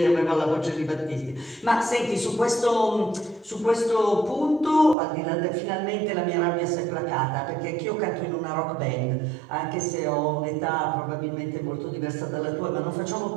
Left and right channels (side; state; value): left; drops out; at 5.0 s